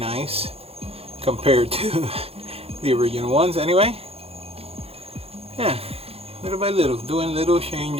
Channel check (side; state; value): left; late; 0.29 ms